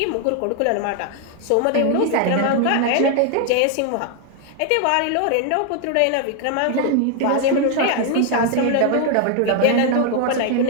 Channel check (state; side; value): different; both; correlation 0.00